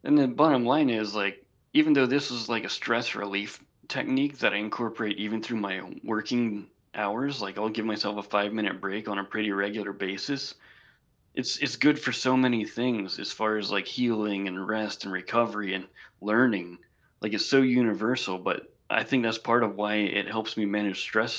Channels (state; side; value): identical; both; correlation 1.00